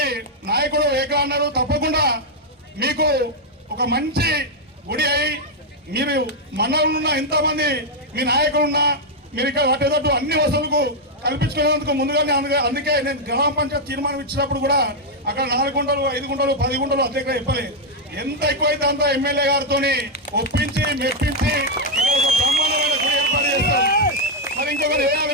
నాయకుడు ఏకలా అన్నారు, తప్పకుండా మీకు ఒక మంచి గుడి అయి మీరు మండలంలో ఎంతమంది మీ నాయకులున్నా మీరు ఇక్కడ వాటేటట్టు అన్ని వసతులకు కల్పించుకునేందుకు ముందుగానే అందుకే నేను గ్రామ పంచాయతీ తీర్మానం ఇచ్చినప్పుడు కూడా అక్కడ 4 గుంటలు 5 గుంటలు 10 గుంటలు అధ్యక్షులు చెప్పలేదు. ఎంత ఎక్కువైతే అంత ఎమ్మెల్యే గారితో ఒప్పించి మెప్పించి ఒక బ్రహ్మాండమైన గుడి ఏర్పాటు చేస్తాం. మరి ఇంకొకరు వేయాలి,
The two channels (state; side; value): normal; both; correlation -0.01